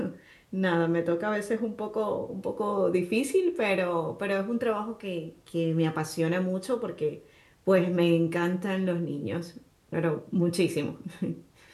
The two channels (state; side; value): identical; both; correlation 1.00